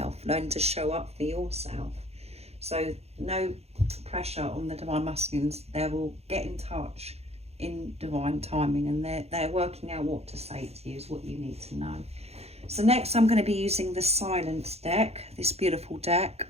learning to show up for yourself. So no pressure on the divine masculines. They will get in touch in divine timing, and they're working out what to say to you is what you need to know. So next I'm going to be using the Silence deck, this beautiful deck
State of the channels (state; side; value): late; left; 0.30 ms